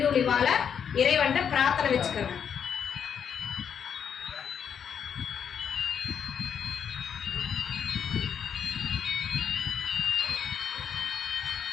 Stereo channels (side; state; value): right; quieter; 7.7 dB